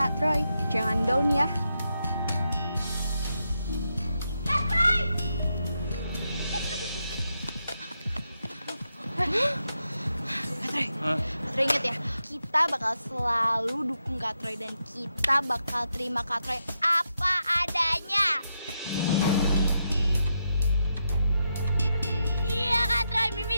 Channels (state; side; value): inverted; both; correlation -0.84